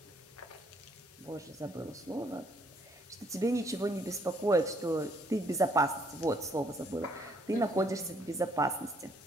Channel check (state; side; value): normal; both; correlation 0.67